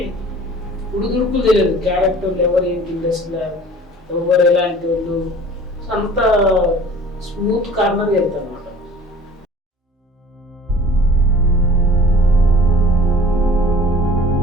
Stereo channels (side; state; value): both; normal; correlation 0.46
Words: ఉడుదుడుకులు తెలియదు, క్యారెక్టర్ ఎవరు ఏంటి ఇండస్ట్రీలో ఎవరు ఎలాంటి వాళ్ళు, సో అంత స్మూత్ కార్నర్ వెళ్తాను అనమాట.